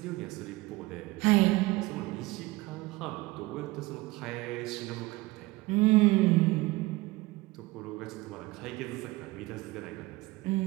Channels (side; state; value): left; quieter; 20.8 dB